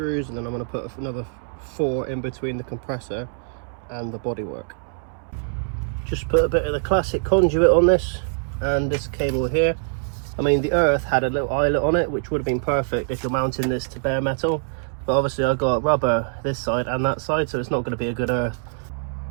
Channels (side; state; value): left; silent; 63 dB below the other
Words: and then I'm going to put another 4 in between the compressor and the bodywork. Just put a bit of the classic conduit on this and this cable here. I mean, the Earth had a little eyelet on it, which would have been perfect if you're mounting this to bare metal, but obviously I got rubber this side and that side, so it's not going to be a good Earth.